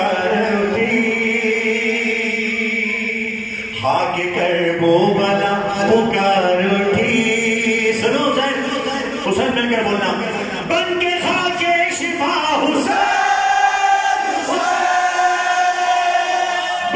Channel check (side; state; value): both; identical; correlation 1.00